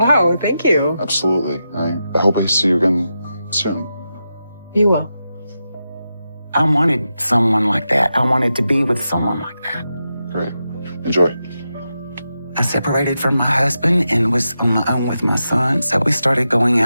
thank you. Absolutely. I hope I see you again soon. You will. I wanted someone like that. I wanted to be with someone like that. Great. Enjoy. I separated from my husband and was on my own with my son, so we started going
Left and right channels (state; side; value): inverted; both; correlation -0.89